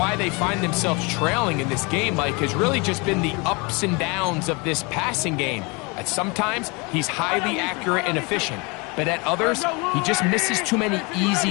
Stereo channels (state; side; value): quieter; right; 28.8 dB